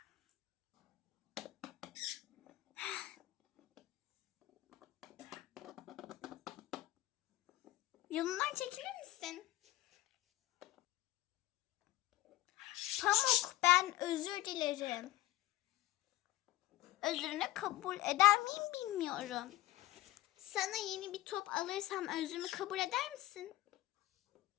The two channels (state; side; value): quieter; right; 16.6 dB